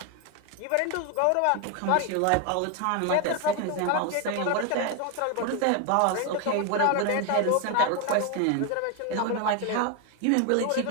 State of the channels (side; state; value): both; different; correlation 0.01